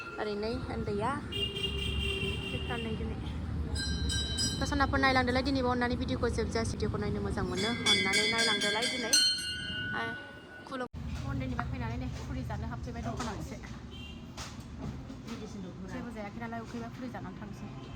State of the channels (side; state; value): both; identical; correlation 1.00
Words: ओरैनो उन्दैया फिरथारनै दिनै सनाफोर नायलांदोलाय दिनैबो अननानै भिडिअखौ जोबजासे भिडिअखौ नायनो मोजां मोनो अननानै नायलांदोलाय दिनै खुलुम मन्दिरनिफ्राय फैनानै नै फुरि जानो हाबफैबाय दखानाव एसे जेबो जायाखै नालाय उखैबा फुरि जानानै थांसै